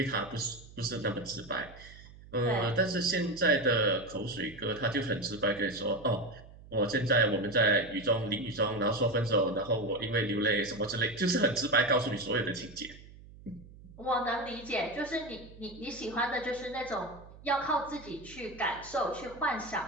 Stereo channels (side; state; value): right; noise; hum, 19 dB below the sound